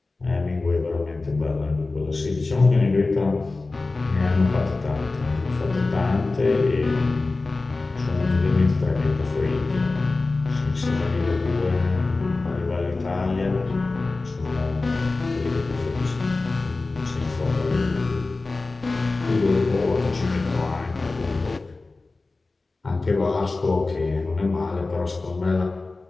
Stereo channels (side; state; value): right; quieter; 3.5 dB